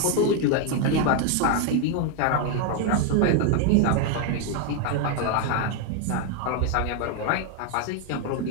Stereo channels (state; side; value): different; both; correlation 0.01